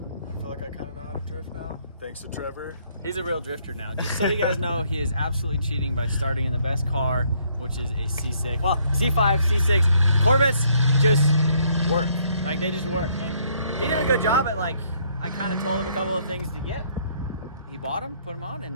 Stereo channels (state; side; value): inverted; both; correlation -0.67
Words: feel like I kind of know how to drift now, thanks to Trevor. He's a real drifter now. Just so you guys know, he is absolutely cheating by starting in the best car, which is a C6. Well, C5, C6. Corvettes just work. Like, they just work. And he did a good job at, like, I kind of told him a couple of things to get. He bought them, put them on, and